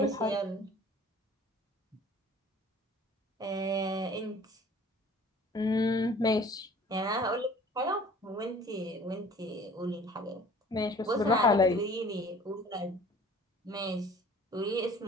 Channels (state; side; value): normal; both; correlation 0.49